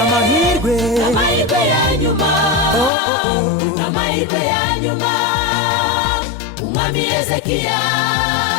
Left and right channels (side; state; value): right; drops out; at 2.9 s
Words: n'amahirwe ya nyuma n'amahirwe ya nyuma umwami Hezekiya